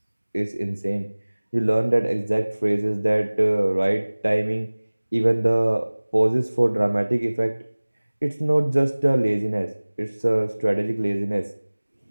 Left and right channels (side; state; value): both; inverted; correlation -1.00